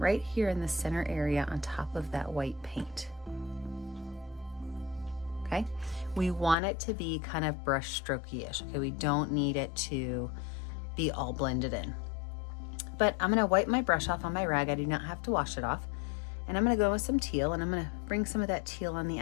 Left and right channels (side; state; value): right; drops out; at 6.6 s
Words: here in the center area on top of that white paint. Okay, we want it to be kind of brush strokey-ish. Okay, we don't need it to be all blended in. But I'm gonna wipe my brush off on my rag. I do not have to wash it off. And I'm gonna go with some teal, and I'm gonna bring some of that teal on the